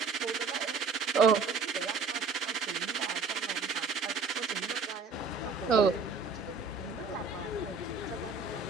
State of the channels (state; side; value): quieter; left; 4.6 dB